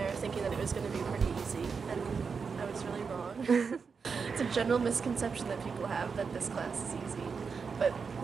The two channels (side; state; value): left; quieter; 5.5 dB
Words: thinking that it was going to be pretty easy, and I was really wrong. It's a general misconception that people have that this class is easy, but